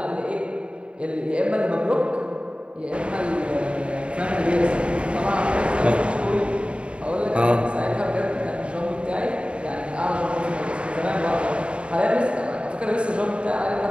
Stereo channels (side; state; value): left; late; 0.057 ms